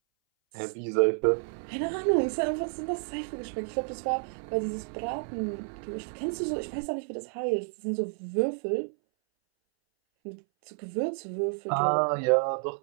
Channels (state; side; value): silent; left; 58 dB below the other